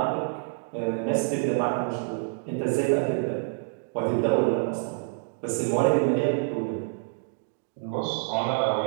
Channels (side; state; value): left; silent; digital silence